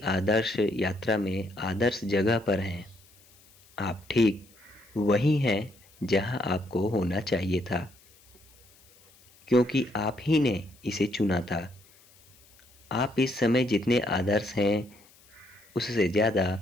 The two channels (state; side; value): noise; left; hiss, 28 dB below the sound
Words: आदर्श यात्रा में आदर्श जगह पर हैं। आप ठीक वहीं हैं जहां आपको होना चाहिए था, क्योंकि आप ही ने इसे चुना था। आप इस समय जितने आदर्श हैं उससे ज़्यादा